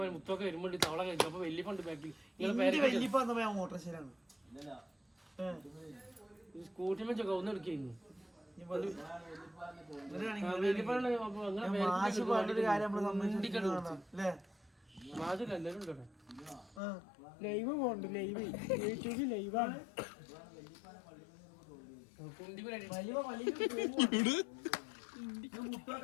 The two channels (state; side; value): drops out; right; at 16.8 s